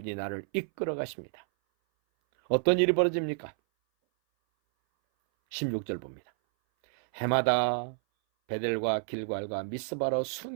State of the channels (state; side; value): silent; left; 58 dB below the other